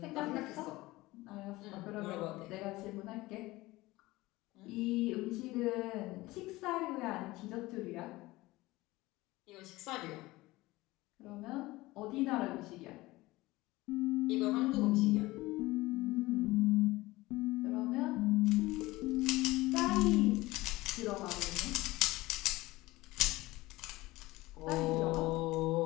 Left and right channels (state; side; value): quieter; right; 19.6 dB